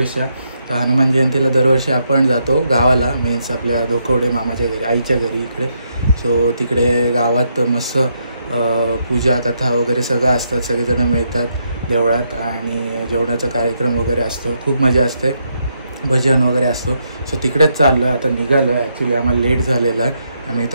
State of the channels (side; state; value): both; inverted; correlation -0.78